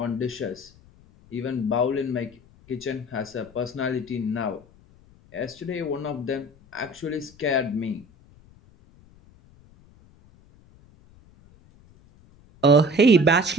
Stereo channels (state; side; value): noise; left; rumble, 27 dB below the sound